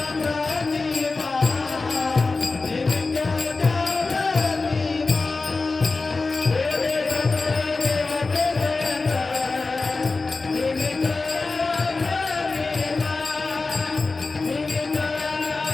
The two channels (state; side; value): quieter; right; 3.8 dB